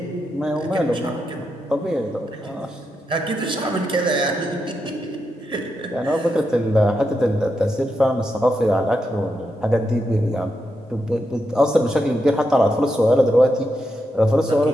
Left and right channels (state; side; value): normal; both; correlation 0.85